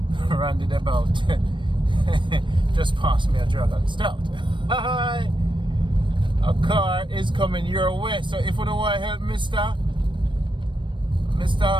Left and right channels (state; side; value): late; left; 0.23 ms